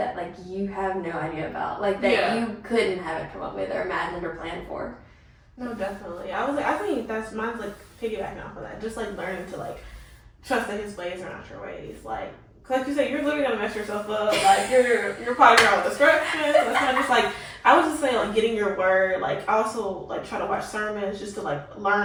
like you have no idea about, like that you couldn't have it come up with or imagined or planned for. No, definitely. I think that's mine's like piggybacking off of that. Just like learning to like trust that his ways are not your ways. Like you said, you're literally gonna mess yourself up. Like you're probably around with destruction. That's kind of just like, I would just say like getting your word. Like I also like try to watch sermons just to like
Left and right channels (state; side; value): identical; both; correlation 1.00